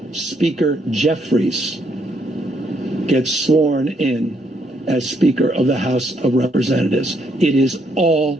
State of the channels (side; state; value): both; normal; correlation 0.73